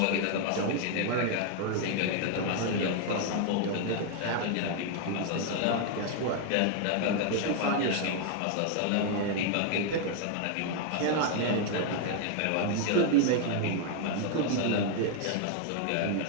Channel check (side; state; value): both; different; correlation 0.00